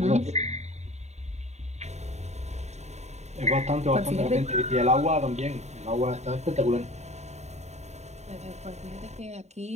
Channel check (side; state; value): left; late; 0.32 ms